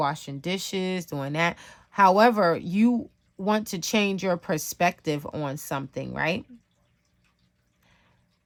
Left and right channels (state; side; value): identical; both; correlation 1.00